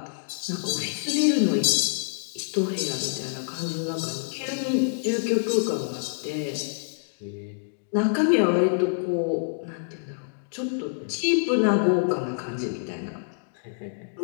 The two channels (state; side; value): silent; right; digital silence